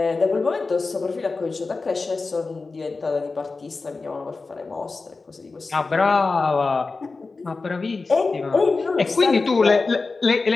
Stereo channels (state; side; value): quieter; right; 3.9 dB